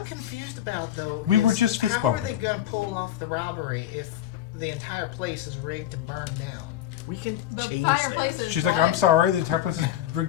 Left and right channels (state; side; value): quieter; right; 12.1 dB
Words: confused about, though, We is were just fist how are they bumping. going to pull off the robbery if the entire place is rigged to burn down? We can the change fireplace that. is She's like, what? I'm sorry, the entire place is